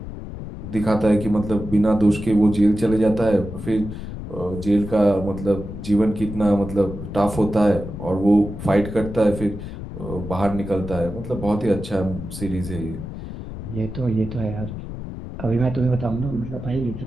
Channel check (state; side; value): noise; left; rumble, 9 dB below the sound